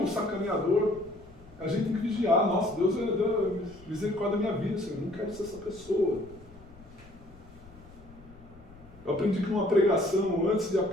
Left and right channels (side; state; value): left; noise; rumble, 21 dB below the sound